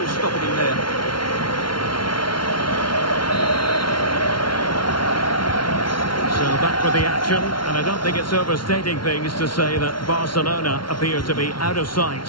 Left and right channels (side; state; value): right; late; 0.73 ms